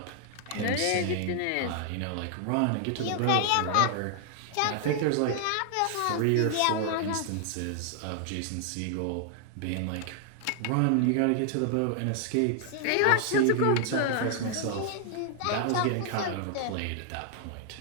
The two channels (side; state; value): both; different; correlation 0.00